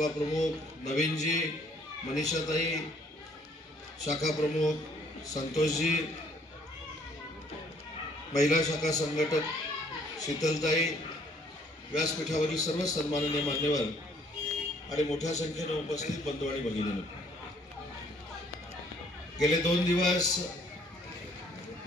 प्रमुख नवीनजी, मनीषाताई, शाखा प्रमुख संतोषजी, महिला शाखा संघटक शीतलताई, व्यासपीठावरील सर्व सन्माननीय मान्यवर आणि मोठ्या संख्येने उपस्थित बंधू आणि भगिनींनो, गेले 2 दिवस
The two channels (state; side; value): normal; both; correlation 0.62